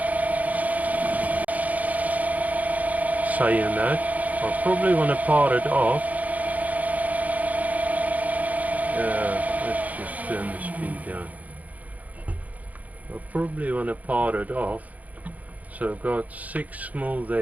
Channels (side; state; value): left; late; 0.075 ms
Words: saying that, I probably want to part it off. Let's just turn the speed down. I probably want to part it off. So I've got 6 mil